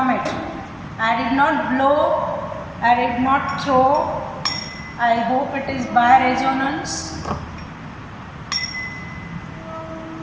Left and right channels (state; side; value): identical; both; correlation 1.00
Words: it. I did not blow, I did not throw. I hope it is by resonance.